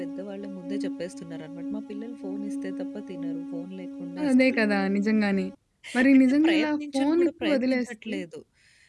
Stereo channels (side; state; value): both; identical; correlation 1.00